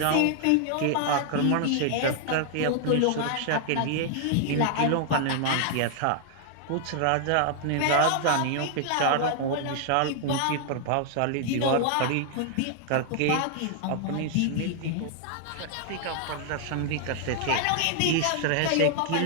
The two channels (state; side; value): different; both; correlation 0.00